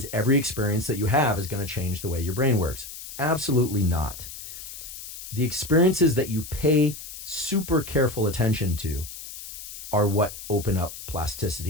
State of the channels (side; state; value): left; noise; hiss, 12 dB below the sound